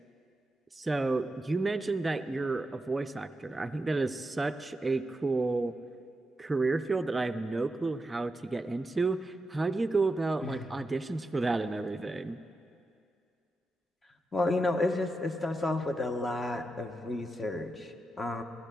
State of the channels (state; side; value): normal; both; correlation 0.88